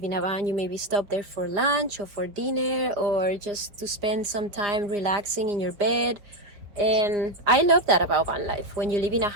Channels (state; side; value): late; left; 4.9 ms